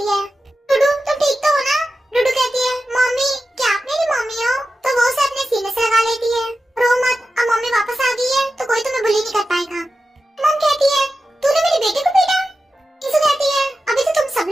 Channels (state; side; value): normal; both; correlation 0.93